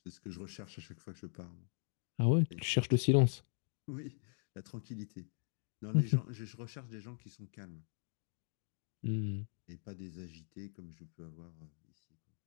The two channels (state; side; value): silent; right; 51 dB below the other